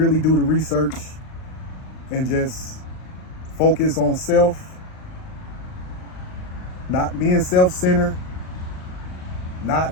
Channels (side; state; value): right; late; 38 ms